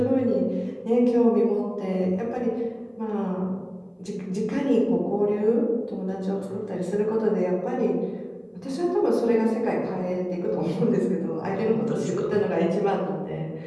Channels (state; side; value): identical; both; correlation 1.00